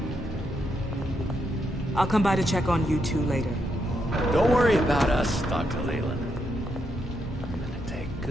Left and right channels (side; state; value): both; normal; correlation 0.80